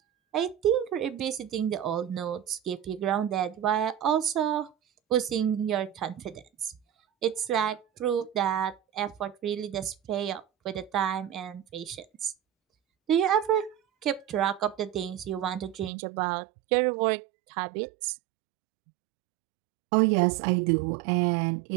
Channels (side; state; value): left; drops out; at 15.9 s